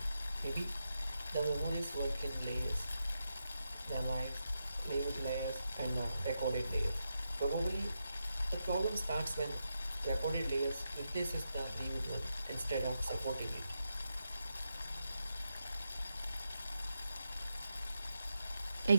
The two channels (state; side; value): inverted; both; correlation -0.87